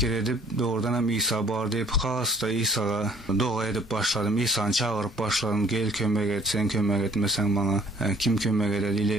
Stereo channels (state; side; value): normal; both; correlation 0.58